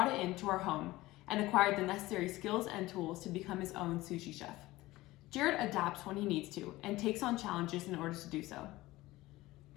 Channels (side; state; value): right; quieter; 18.4 dB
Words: it into our home and acquired the necessary skills and tools to become his own sushi chef. Jared adapts when he needs to and takes on challenges in order to do so.